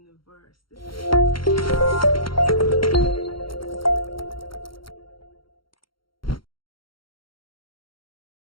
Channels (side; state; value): right; late; 0.73 ms